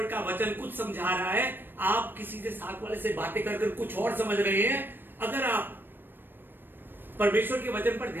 का वचन कुछ समझा रहा है, आप किसी से साथ वाले से बातें कर कुछ और समझ रहे हैं। अगर आप परमेश्वर के वचन पर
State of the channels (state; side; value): late; left; 0.096 ms